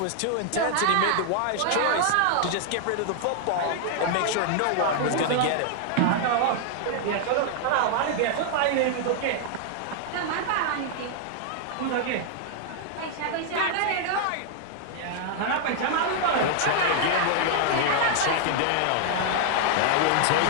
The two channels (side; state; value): both; different; correlation 0.00